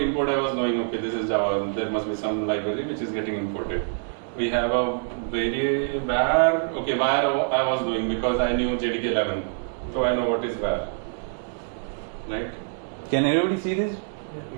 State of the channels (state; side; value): silent; left; digital silence